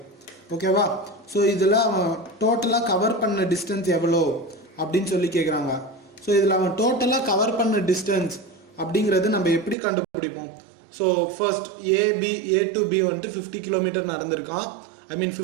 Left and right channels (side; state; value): left; drops out; at 9.8 s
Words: ஓகேவா? ஸோ இதில் அவன் டோட்டலாக கவர் பண்ண டிஸ்டன்ஸ் எவ்வளோ அப்படின்னு சொல்லி கேட்குறாங்க. ஸோ இதில் அவன் டோட்டலாக கவர் பண்ண டிஸ்டன்ஸ் அப்படிங்கிறது நம்ம எப்படி கண்டுபிடிப்போம்? So first A to B வந்துட்டு 50 கிலோமீட்டர் நடந்திருக்கான்,